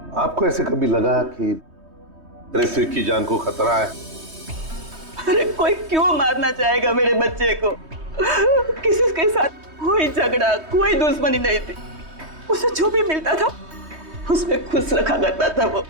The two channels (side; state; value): left; late; 3.2 ms